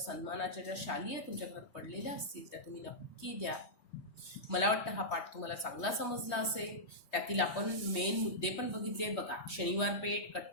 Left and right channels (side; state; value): right; late; 3.2 ms